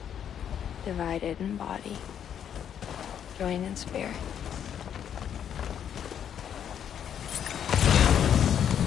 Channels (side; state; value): right; quieter; 9.0 dB